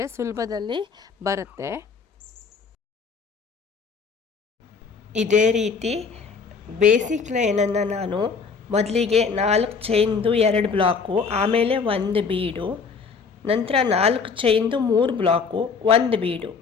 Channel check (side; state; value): right; quieter; 5.3 dB